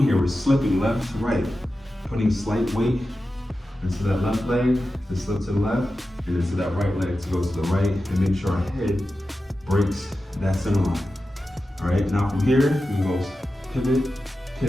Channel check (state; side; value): normal; both; correlation 0.92